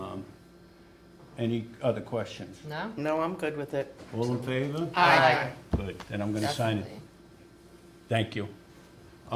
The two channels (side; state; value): both; identical; correlation 1.00